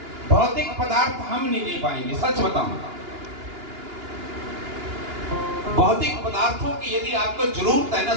भौतिक पदार्थ हम नहीं दे पाएंगे, सच बताऊं। भौतिक पदार्थों की यदि आपको जरूरत है ना,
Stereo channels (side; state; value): left; late; 2.9 ms